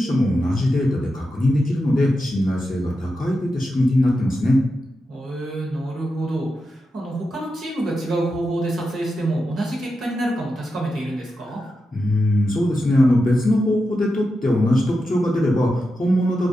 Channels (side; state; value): both; normal; correlation 0.89